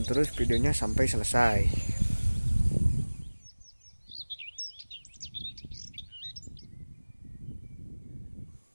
terus videonya sampai selesai.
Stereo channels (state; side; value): inverted; both; correlation -1.00